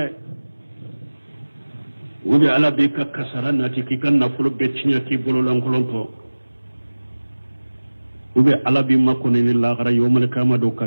wudi ala be ka kasara na ti kikan na fulo be chinya ki bolo lankolonto ube ala bi makko ni la gara yomal kama do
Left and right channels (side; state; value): both; inverted; correlation -1.00